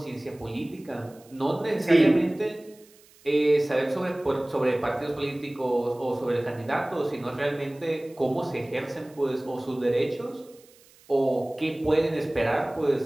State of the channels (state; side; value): noise; right; hiss, 27 dB below the sound